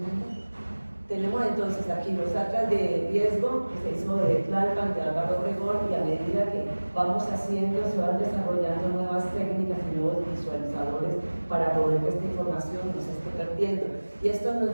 Tenemos entonces aquí los atlas de riesgo que se hizo de Tlalpan, de Álvaro Obregón, y a medida que vamos haciendo, se van desarrollando nuevas técnicas y nuevos visualizadores para poder que esta información no se esté perdiendo. Y esto nos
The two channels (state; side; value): inverted; both; correlation -1.00